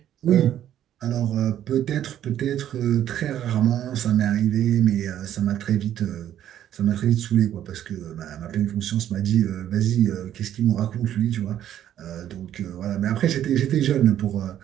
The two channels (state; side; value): quieter; left; 11.2 dB